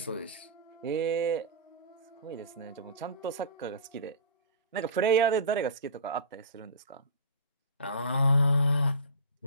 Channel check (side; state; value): both; inverted; correlation -0.32